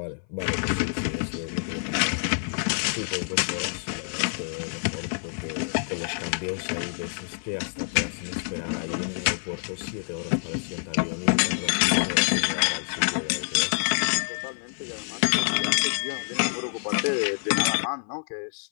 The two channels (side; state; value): right; silent; 57 dB below the other